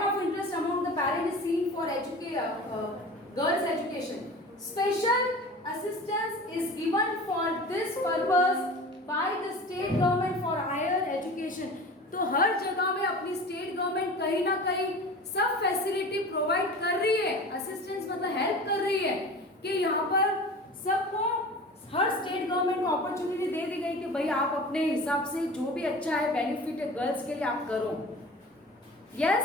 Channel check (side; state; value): both; normal; correlation 0.37